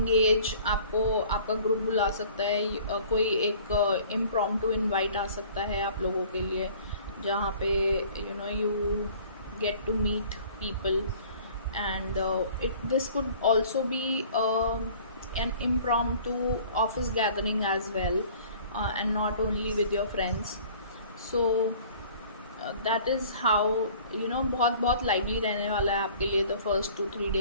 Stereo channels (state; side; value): inverted; both; correlation -0.50